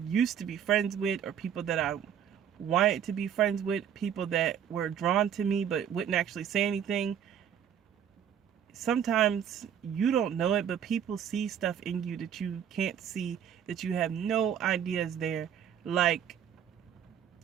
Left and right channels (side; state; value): left; quieter; 8.9 dB